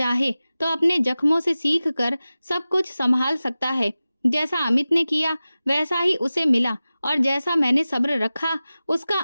तो अपने जख्मों से सीख कर सब कुछ संभाल सकता है। जैसा अमित ने किया वैसा ही उसे मिला और जैसा मैंने सब्र रखा उसका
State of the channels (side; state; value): both; inverted; correlation -0.96